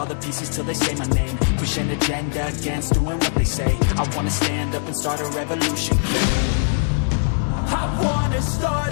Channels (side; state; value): right; silent; digital silence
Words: the pieces till they say my name. Push an agenda against doing what they say. I wanna stand up and start a revolution. I wanna